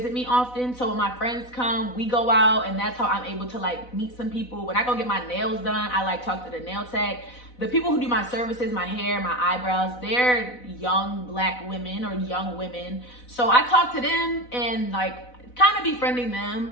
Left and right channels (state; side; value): late; right; 4.0 ms